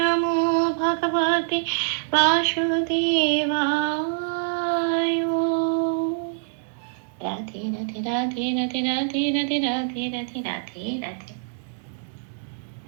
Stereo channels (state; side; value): silent; left; digital silence